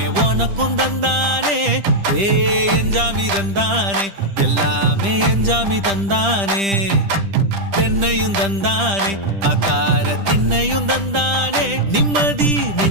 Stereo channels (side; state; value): left; late; 10 ms